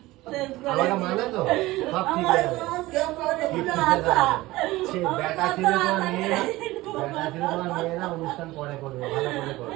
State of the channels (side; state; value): left; quieter; 18.7 dB